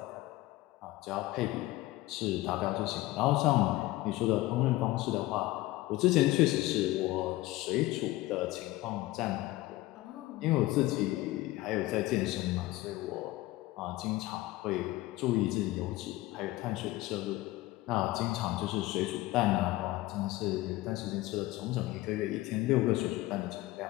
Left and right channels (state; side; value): quieter; right; 17.9 dB